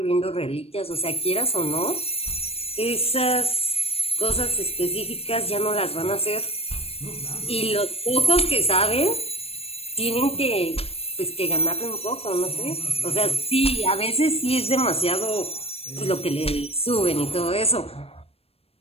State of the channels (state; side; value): late; right; 0.28 ms